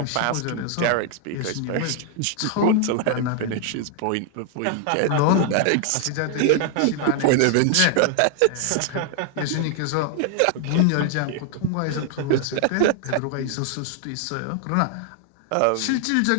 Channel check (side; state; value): both; different; correlation 0.00